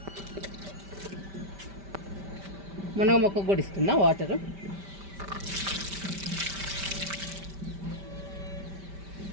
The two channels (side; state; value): left; late; 5.1 ms